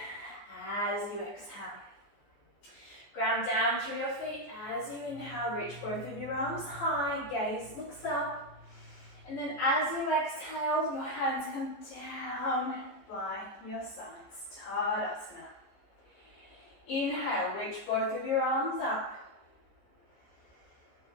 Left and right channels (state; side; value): late; right; 14 ms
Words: as you exhale. Ground down through your feet. As you inhale, reach both of your arms high, gaze looks up. And then as you exhale, your hands come down by your sides. Tadasana. Inhale, reach both of your arms up.